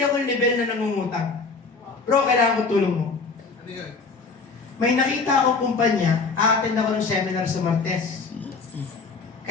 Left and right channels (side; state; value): right; quieter; 4.3 dB